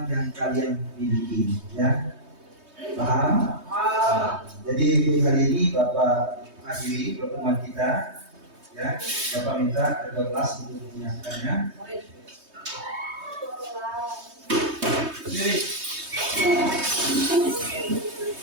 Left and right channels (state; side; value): late; left; 3.2 ms